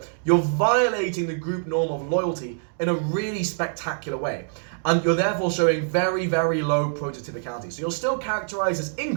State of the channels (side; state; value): left; silent; digital silence